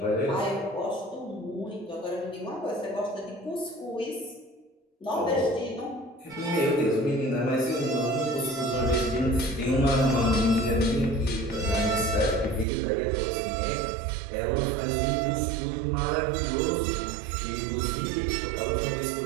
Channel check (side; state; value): left; drops out; at 12.7 s